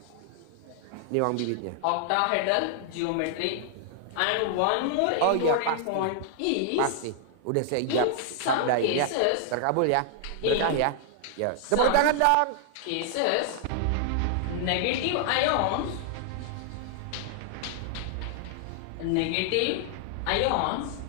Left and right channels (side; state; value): both; different; correlation -0.01